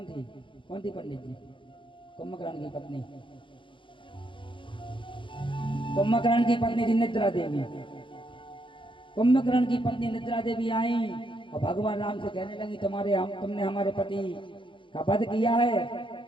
थी पंडित जी? कुंभकर्ण की पत्नी, कुंभकर्ण की पत्नी थी निद्रा देवी। कुंभकर्ण की पत्नी निद्रा देवी आई और भगवान राम से कहने लगी, तुमने हमारे पति का वध किया है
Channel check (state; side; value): late; right; 0.24 ms